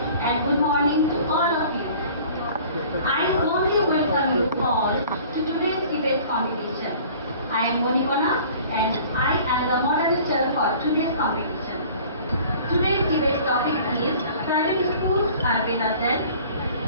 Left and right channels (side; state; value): both; inverted; correlation -0.48